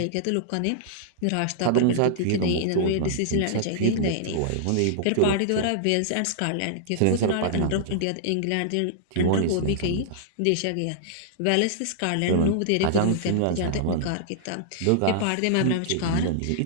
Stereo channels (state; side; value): different; both; correlation -0.01